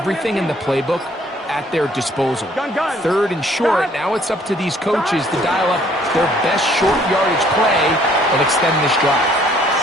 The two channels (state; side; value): normal; both; correlation 0.61